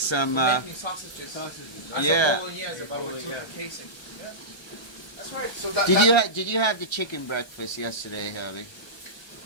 Making sausages. Yeah. Bolognese, but we took the casing. Yeah. That's right. So that, Did you have the chicken breakfast yesterday, Herbie?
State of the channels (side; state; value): right; late; 1.3 ms